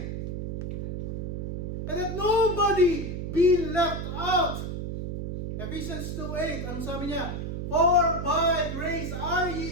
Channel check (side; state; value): right; noise; hum, 5 dB below the sound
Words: And that nobody be left out. Ephesians 2:8, ano sabi niya? For by grace are